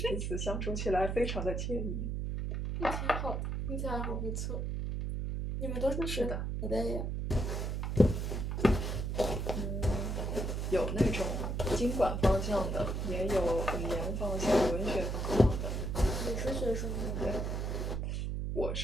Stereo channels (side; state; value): right; noise; hum, 1 dB below the sound